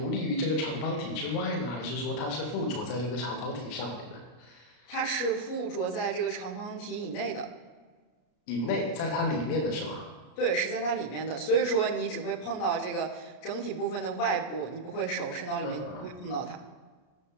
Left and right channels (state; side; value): late; right; 33 ms